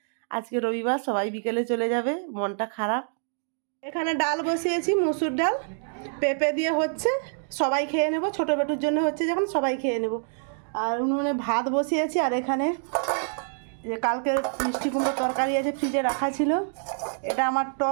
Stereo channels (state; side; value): silent; left; digital silence